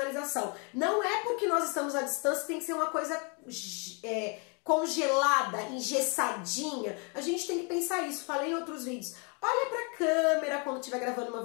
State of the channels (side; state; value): right; quieter; 34.9 dB